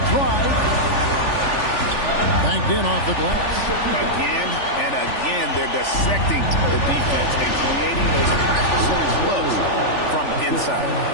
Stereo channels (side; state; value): right; late; 3.4 ms